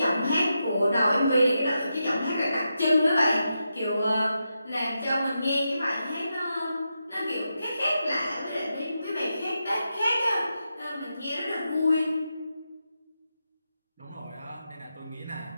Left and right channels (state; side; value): inverted; both; correlation -0.87